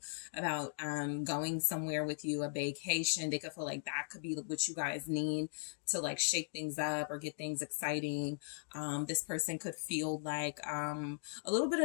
about going somewhere with you, a vacation. They could feel like that could be what you guys need to like shake things up or get things exciting. This person could feel like a little bit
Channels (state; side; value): silent; right; digital silence